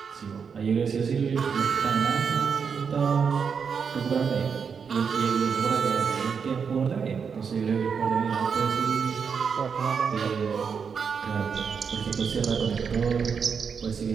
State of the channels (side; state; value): left; quieter; 6.3 dB